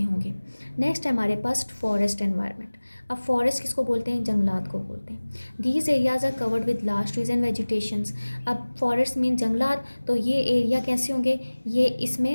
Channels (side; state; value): both; inverted; correlation -1.00